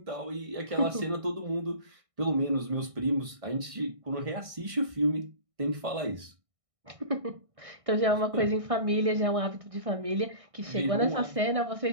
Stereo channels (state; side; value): late; left; 1.6 ms